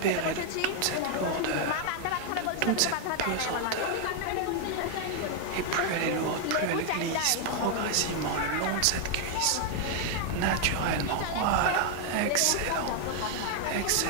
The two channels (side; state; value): both; different; correlation 0.00